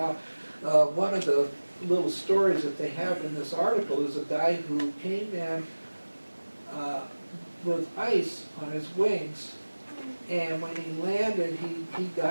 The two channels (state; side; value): inverted; both; correlation -1.00